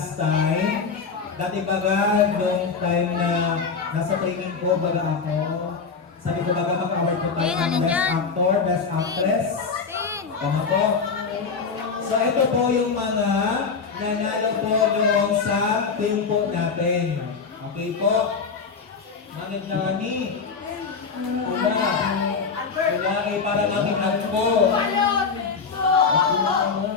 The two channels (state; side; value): quieter; right; 5.2 dB